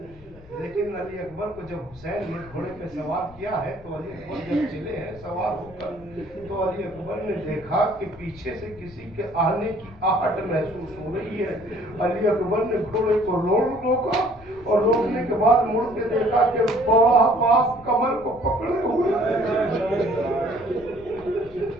लेकिन अली अकबर को जब हुसैन ने घोड़े पे सवार किया है तो अली अकबर जब चले हैं सवार होकर, तो अली अकबर ने देखा कि पीछे से किसी के आने की आहट महसूस हो रही है। अली अकबर ने घोड़े को रोका और रोकने के बाद मुड़ के देखा कि बड़ा बाप कमर को पकड़े हुए।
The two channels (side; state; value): left; noise; rumble, 21 dB below the sound